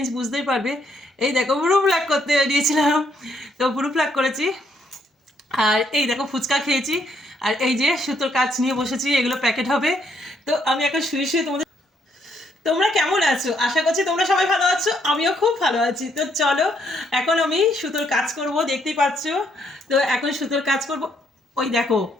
বুঝতেই পারবে। এই দেখো ব্রু প্লাগ করতে বেরিয়েছিলাম, তো ব্রু প্লাগ করেছি। আর এই দেখো ফুচকা খেয়েছি। আর এই যে সুতোর কাজ নিয়ে বসেছি, এগুলো প্যাকেট হবে। তো আমি এখন শুয়ে শুয়ে তোমাদের, তোমরা কেমন আছো? আশা করছি তোমরা সবাই ভালো আছো, আমিও খুব ভালো আছি। তো চলো, এখন আমি সুতোর কাজ করব, দেখতেই পাচ্ছ। তো এখন সুতোর কাজ করব। ওই দেখো,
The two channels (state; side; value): normal; both; correlation 0.72